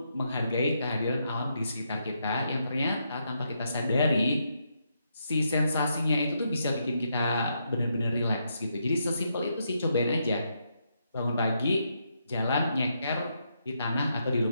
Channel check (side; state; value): both; inverted; correlation -0.79